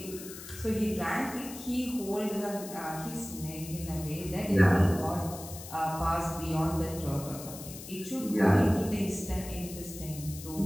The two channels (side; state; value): left; noise; hiss, 13 dB below the sound